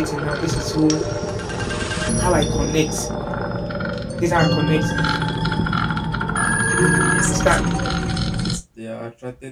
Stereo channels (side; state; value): both; identical; correlation 1.00